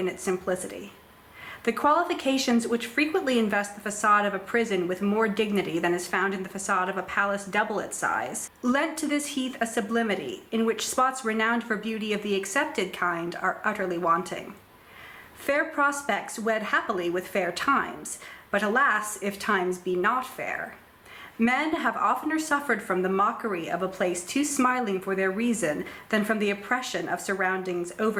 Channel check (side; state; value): both; identical; correlation 1.00